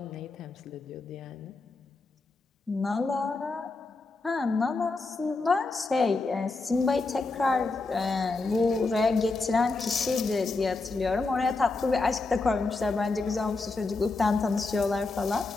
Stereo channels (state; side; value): quieter; right; 3.7 dB